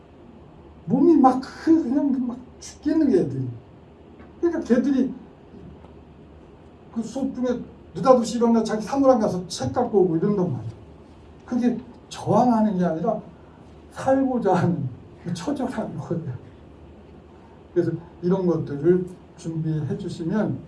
몸이 그냥 막 죽겠는 게 애들이. 그러니까 걔들이 그 수업 중에 느닷없이 일어나 자기 사무랑 가서 책 갖고 오고 이런단 말이야. 그게 저항하는 게 아니라 살고자 하는 처절한 거예요. 그래서 이런 것들을 준비해 주시면,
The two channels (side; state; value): both; identical; correlation 1.00